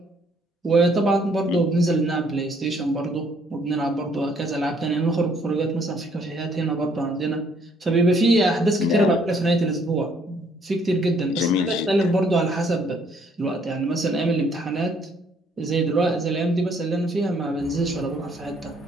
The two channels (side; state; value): both; normal; correlation 0.65